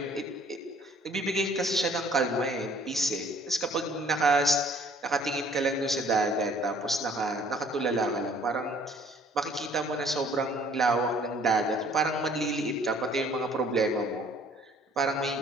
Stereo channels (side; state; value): both; normal; correlation 0.57